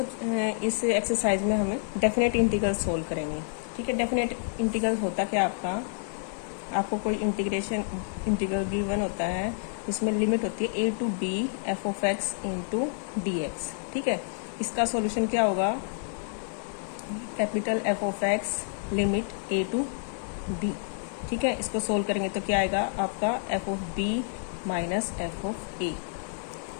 इस एक्सरसाइज में हमें डेफिनेट इंटीग्रल सोल्व करेंगे। ठीक है, डेफिनेट इंटीग्रल होता क्या आपको कोई इंटीग्रल गिवन होता है जिसमें लिमिट होती है a to b f of x into D x. ठीक है, इसका सॉल्यूशन क्या होगा? Capital F of x limit a to b। ठीक है, इसको सोल्व करेंगे तो क्या आएगा आपका f of b minus f of a।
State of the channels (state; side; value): silent; right; digital silence